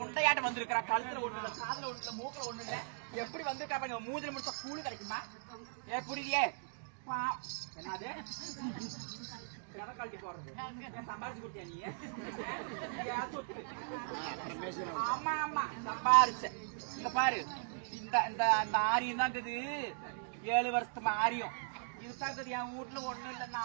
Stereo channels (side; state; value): left; silent; digital silence